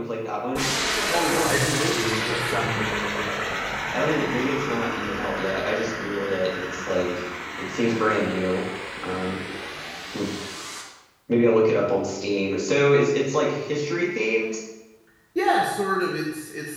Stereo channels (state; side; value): identical; both; correlation 1.00